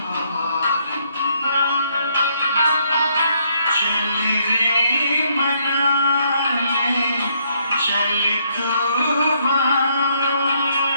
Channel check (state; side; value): inverted; both; correlation -0.71